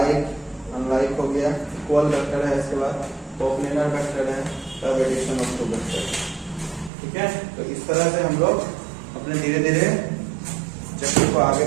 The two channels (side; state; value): left; drops out; at 6.9 s